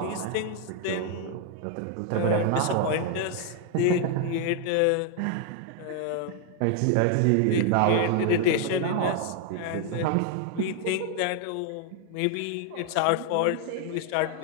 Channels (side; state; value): both; different; correlation 0.00